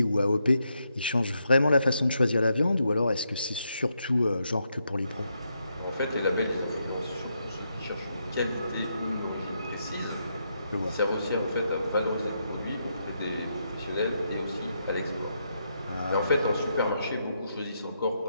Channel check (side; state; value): both; inverted; correlation -0.80